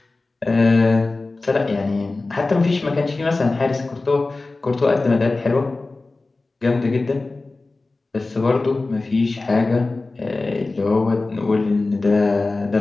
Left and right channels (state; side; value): quieter; right; 3.4 dB